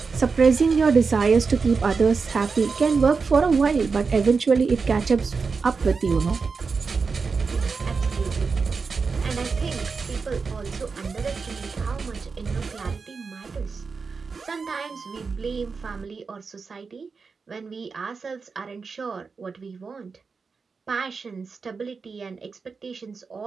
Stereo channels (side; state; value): left; quieter; 4.9 dB